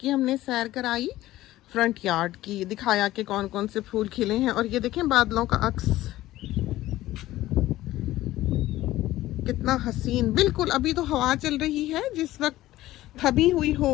हमने सैर कराई, फ्रंट यार्ड की दिखाया कि कौन कौन से फूल खिले हैं। और ये देखें बादलों का अक्स कितना हसीन। बिल्कुल अभी तो हवा चल रही है, जिस वक्त थमी हुई हो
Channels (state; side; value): quieter; right; 15.8 dB